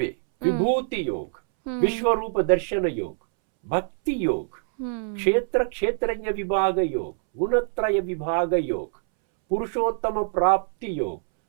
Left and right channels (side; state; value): left; silent; 62 dB below the other